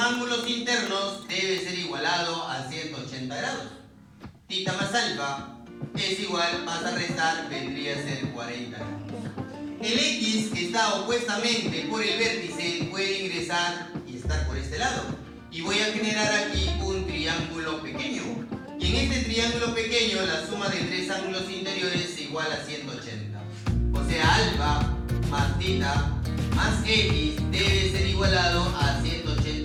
internos, debe ser igualado a 180 grados. Tita más alfa es igual, vas a restar, vendría a ser 40 grados. El X que está opuestamente por el vértice puede ingresar y estar por este lado. Y voy a generar aquí un triángulo pequeño. Y en este triángulo pequeño la suma de tres ángulos interiores es igual a 180. O sea, alfa más tita más X debe ser igualado a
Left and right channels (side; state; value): both; identical; correlation 1.00